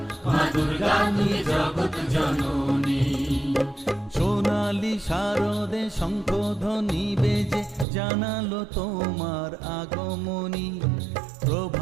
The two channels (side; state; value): left; drops out; at 7.9 s